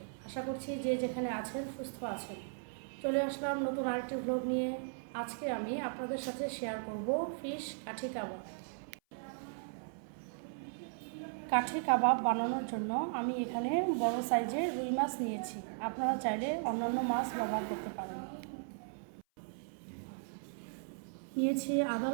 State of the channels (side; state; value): left; silent; 53 dB below the other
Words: আশা করছি যে যেখানে আছেন সুস্থ আছেন। চলে আসলাম নতুন আরেকটি ব্লগ নিয়ে। আজকে আমি আপনাদের সাথে শেয়ার করব ফিশ কাঠি কাবাব। কাঠি কাবাব বানানোর জন্য আমি এখানে বড় সাইজের রুই মাছ নিয়েছি। আপনারা চাইলে অন্যান্য মাছ ব্যবহার করতে পারেন। নিয়েছি আদা